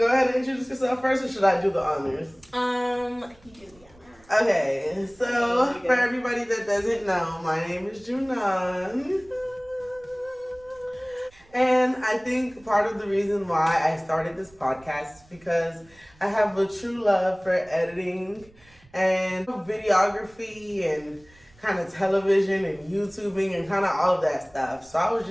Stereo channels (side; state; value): right; noise; rumble, 28 dB below the sound